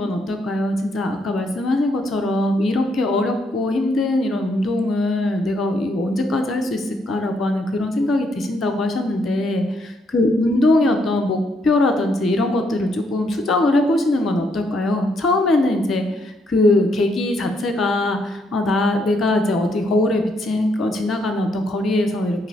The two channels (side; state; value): both; normal; correlation 0.74